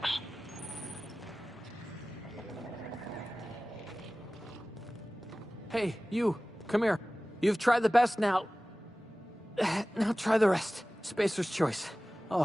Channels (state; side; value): normal; both; correlation 0.97